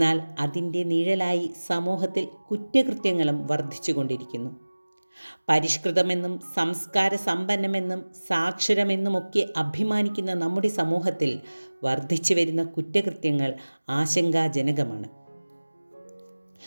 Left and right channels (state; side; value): inverted; both; correlation -1.00